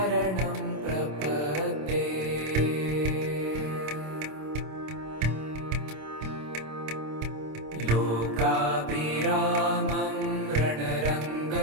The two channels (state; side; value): late; left; 26 ms